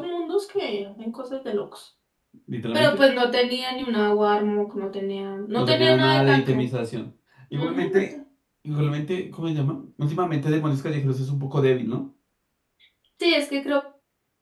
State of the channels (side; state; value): both; identical; correlation 1.00